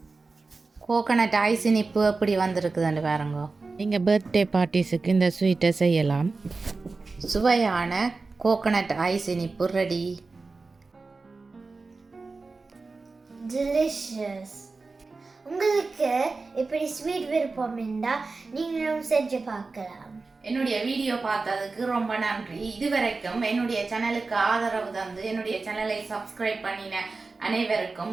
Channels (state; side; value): quieter; left; 3.9 dB